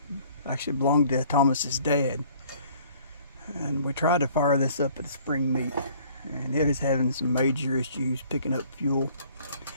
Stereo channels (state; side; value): inverted; both; correlation -0.56